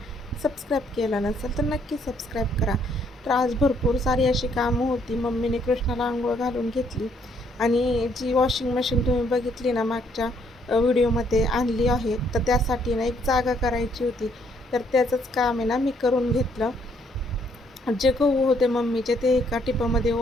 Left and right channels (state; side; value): normal; both; correlation 0.68